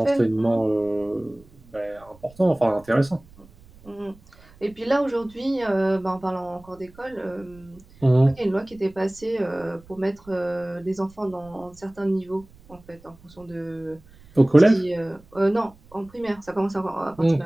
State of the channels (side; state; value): right; noise; rumble, 25 dB below the sound